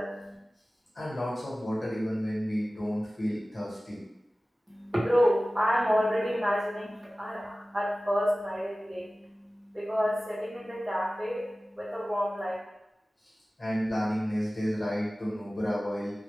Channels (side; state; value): both; normal; correlation 0.97